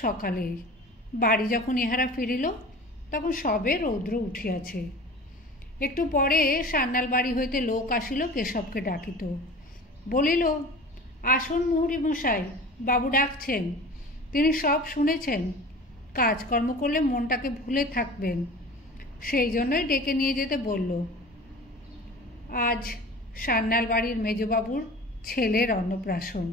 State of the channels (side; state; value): both; normal; correlation 0.39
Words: সকালেই। বাড়ি যখন ইহারা ফিরিল তখন সবে রৌদ্র উঠিয়াছে। একটু পরে সান্যাল বাড়ি হইতে লোক আসিল কেশবকে ডাকিত। বলিল, আসুন মুহুরী মশাই, বাবু ডাকছেন। তিনি সব শুনেছেন। কাজকর্ম করলে মনটাকে ভুলে থাকবেন, সেই জন্যই ডেকে নিয়ে যেতে বলল। আজ সান্যাল বাড়ির মেজবাবুর ছেলের অন্নপ্রাশন।